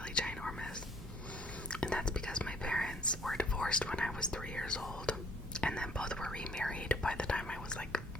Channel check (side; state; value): both; normal; correlation 0.61